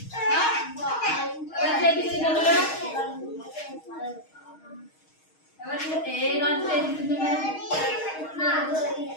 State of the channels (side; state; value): right; late; 6.4 ms